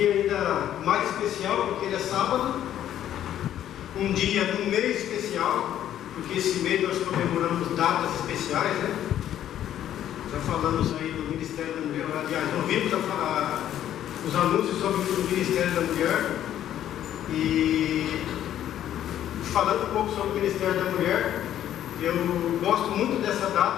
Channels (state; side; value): quieter; right; 11.3 dB